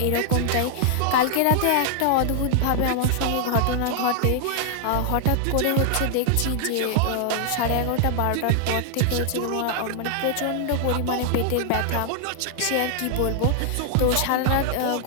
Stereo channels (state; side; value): different; both; correlation 0.00